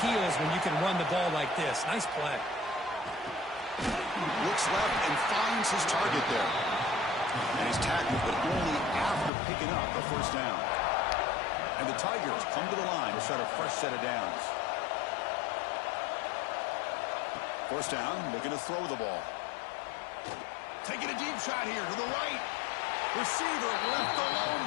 heels when you can run the ball like this. Nice play. Looks left and finds his target there. And he's tackled, but only after picking up a first down. And the Tigers come to the line to start a fresh set of downs. First down, looking to throw the ball. Taking a deep shot here to the right. Receiver left alone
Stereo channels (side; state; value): right; drops out; at 9.3 s